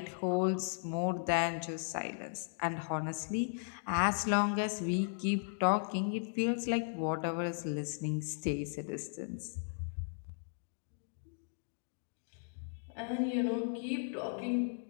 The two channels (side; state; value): right; silent; digital silence